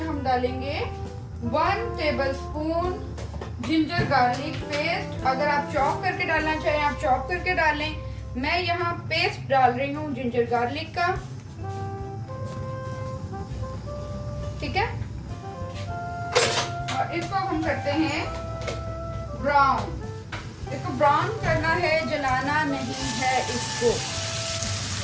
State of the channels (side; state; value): both; identical; correlation 1.00